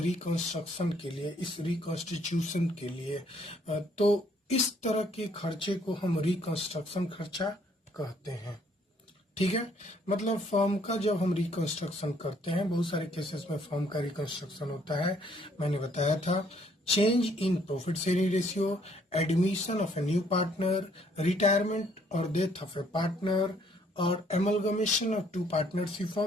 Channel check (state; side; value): normal; both; correlation 0.65